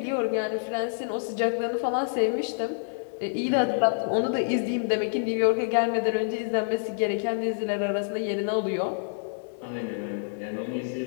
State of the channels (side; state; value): right; silent; digital silence